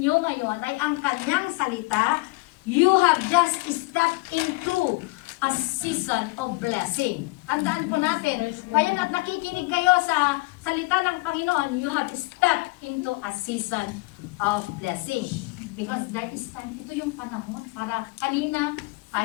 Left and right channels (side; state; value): right; quieter; 24.6 dB